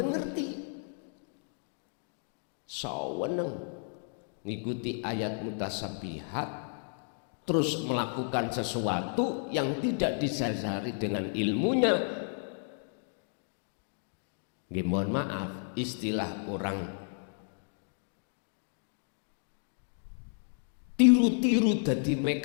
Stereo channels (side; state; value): right; silent; 56 dB below the other